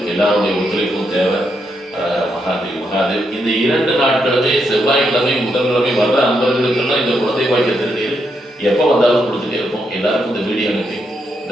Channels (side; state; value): both; normal; correlation 0.80